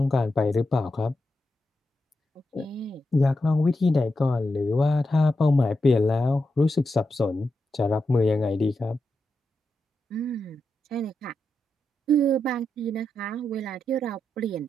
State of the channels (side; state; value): both; normal; correlation 0.87